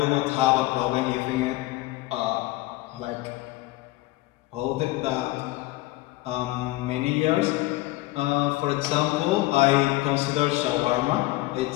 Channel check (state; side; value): quieter; right; 18.8 dB